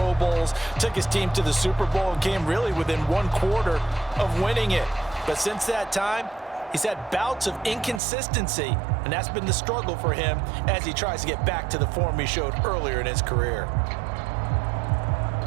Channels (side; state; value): left; drops out; at 8.0 s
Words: Bowls, took his team to the Super Bowl and came really within 1/4 of winning it. But since that time, he's had bouts of inconsistency, and that's been the struggle for him as he tries to get back to the form he showed earlier in his career.